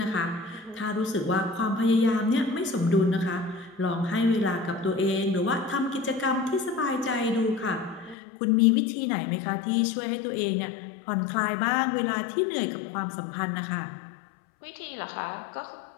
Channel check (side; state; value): right; drops out; at 8.2 s